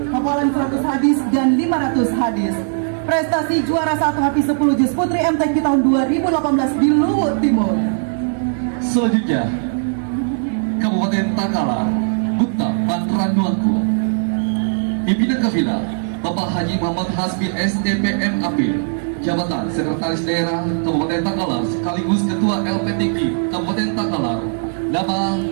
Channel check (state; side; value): silent; left; digital silence